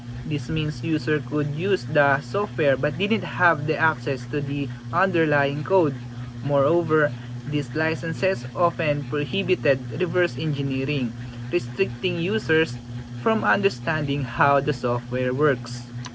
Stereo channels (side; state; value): both; identical; correlation 1.00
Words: This means user could use the software but didn't have the access to the underlying code. Moreover, these licenses often prohibited reverse engineering, restricting users from understanding how the software works.